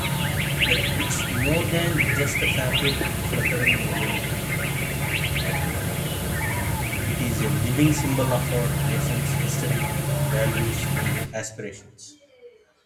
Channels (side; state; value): both; identical; correlation 1.00